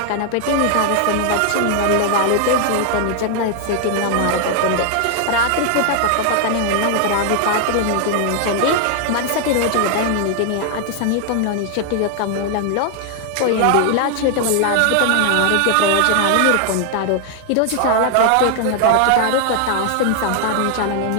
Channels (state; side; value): different; both; correlation 0.00